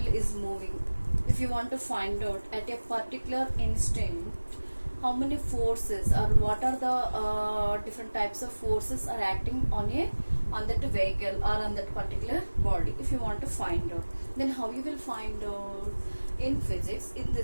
is moving, if you want to find out at a particular instant how many forces or what are the different types of forces are acting on that vehicle or on that particular body, if you want to find out, then how you will find out? In physics, in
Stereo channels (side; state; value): both; inverted; correlation -1.00